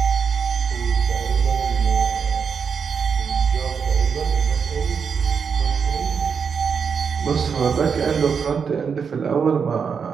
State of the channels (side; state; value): left; quieter; 6.3 dB